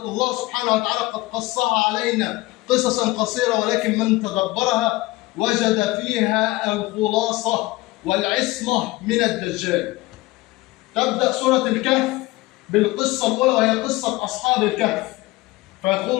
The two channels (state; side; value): quieter; right; 20.3 dB